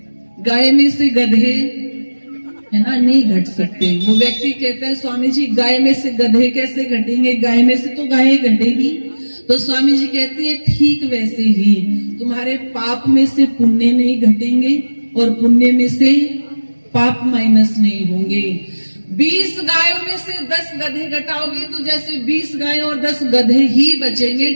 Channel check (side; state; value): both; inverted; correlation -1.00